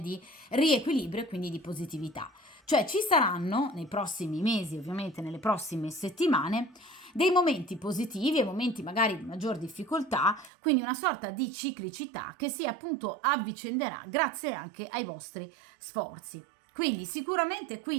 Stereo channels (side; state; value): left; drops out; at 10.5 s